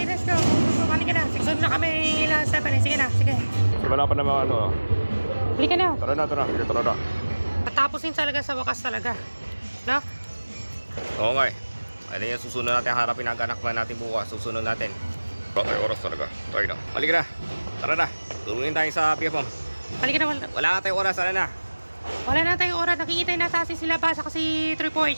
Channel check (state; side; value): inverted; both; correlation -1.00